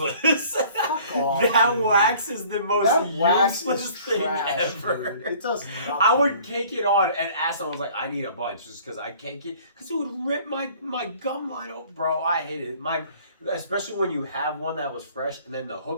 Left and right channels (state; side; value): inverted; both; correlation -0.53